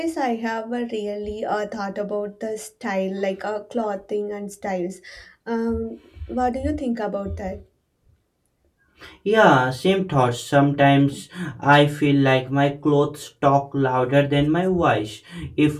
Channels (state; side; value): identical; both; correlation 1.00